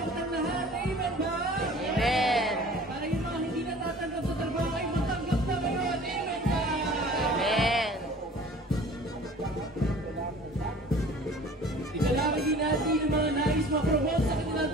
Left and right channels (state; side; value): normal; both; correlation 0.46